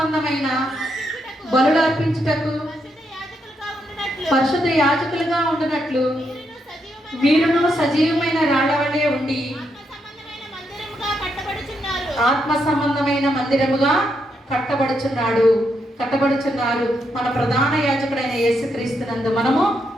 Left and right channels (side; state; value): both; normal; correlation 0.80